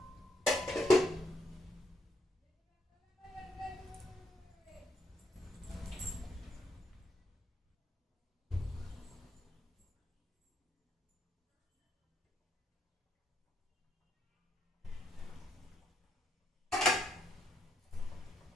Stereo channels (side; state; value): both; normal; correlation 0.76